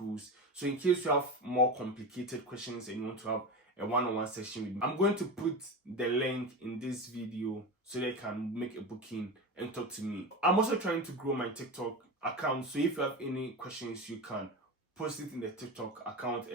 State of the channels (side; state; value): both; normal; correlation 0.23